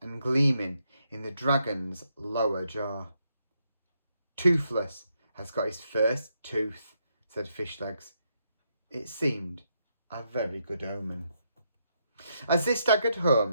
gleaming in the dragon's lower jaw. "Toothless has got his first tooth," said Fishlegs. It seemed a very good omen. As they staggered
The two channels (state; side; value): inverted; both; correlation -0.79